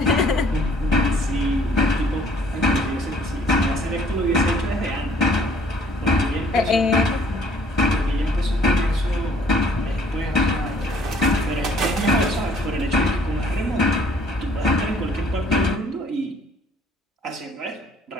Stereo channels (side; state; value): both; normal; correlation 0.59